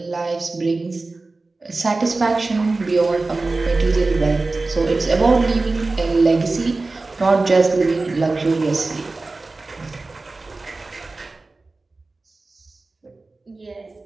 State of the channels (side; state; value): left; quieter; 3.4 dB